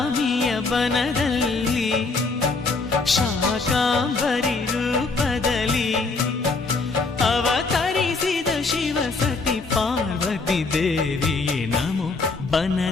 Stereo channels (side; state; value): right; quieter; 3.9 dB